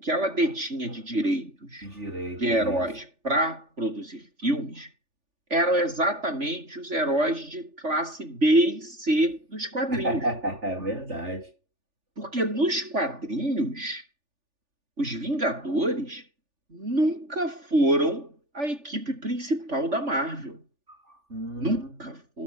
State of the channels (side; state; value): left; late; 3.4 ms